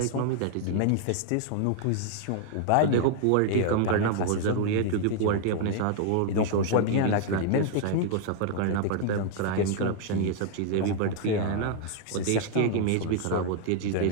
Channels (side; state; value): both; different; correlation 0.00